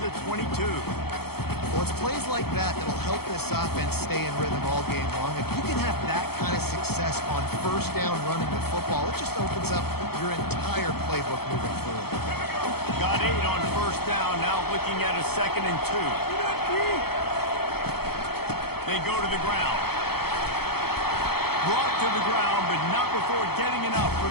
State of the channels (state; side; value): late; right; 0.96 ms